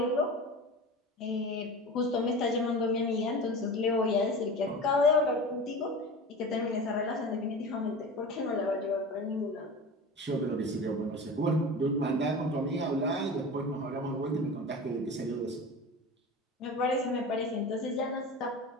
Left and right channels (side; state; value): both; normal; correlation 0.32